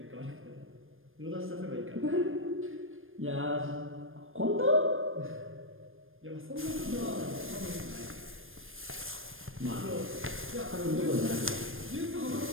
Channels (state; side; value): late; left; 0.59 ms